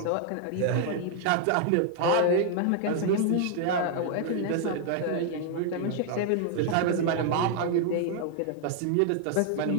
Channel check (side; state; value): both; different; correlation 0.00